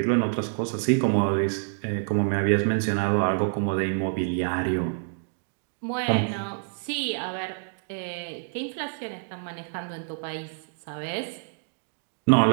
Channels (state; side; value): silent; left; digital silence